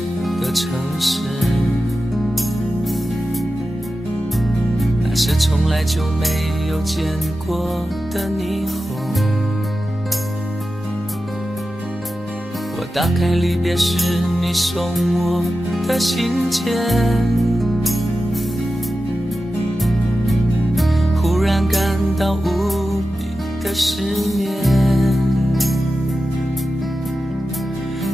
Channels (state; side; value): normal; both; correlation 0.93